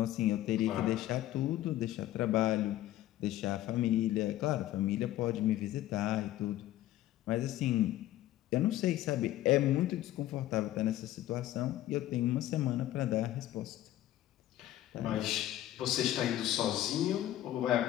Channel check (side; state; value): right; quieter; 13.9 dB